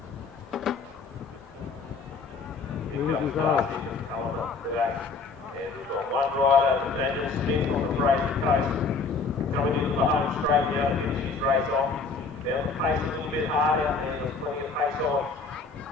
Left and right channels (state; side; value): quieter; right; 4.5 dB